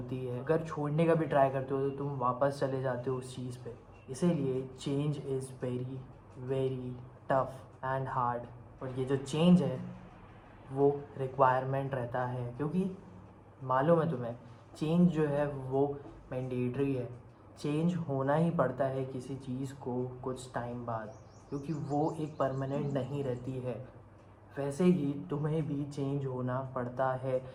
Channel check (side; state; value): both; identical; correlation 1.00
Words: है। अगर छोड़ने का भी ट्राई करते हो तो तुम वापस चले जाते हो उस चीज़ पे। इसीलिए change is very very tough and hard. और ये जो चेंज है वो रिक्वायरमेंट रहता है, क्योंकि मालूम है तुम्हें, चेंज जो है वो मैंडेटरी है। चेंज होना ही पड़ता है किसी चीज़ को कुछ टाइम बाद, क्योंकि वो एक परमानेंट नहीं रहती है। वैसे ही तुम्हें भी चेंज होना पड़ता है।